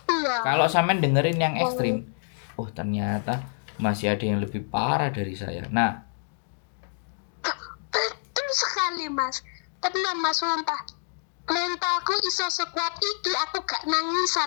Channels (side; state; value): right; silent; digital silence